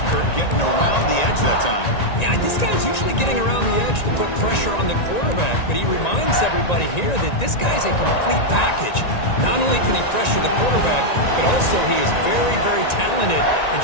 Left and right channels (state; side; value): late; right; 1.9 ms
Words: Kirk, getting around the edge that time. Yeah, this guy's usually getting around the edge to put pressure on the quarterback, but he reminds everybody here that this guy's a complete package. Not only can he pressure the quarterback, but also he is very, very talented and